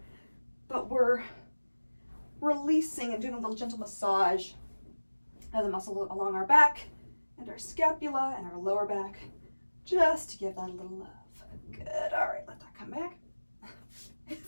but we're releasing and doing a little gentle massage of the muscle along our back and our scapula and our lower back, just to give that a little love. Good. All right, let that come back.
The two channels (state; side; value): inverted; both; correlation -1.00